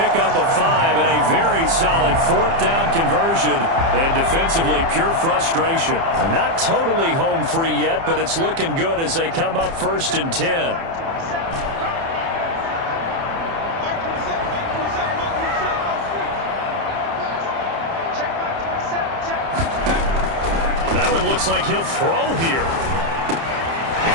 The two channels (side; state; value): left; late; 30 ms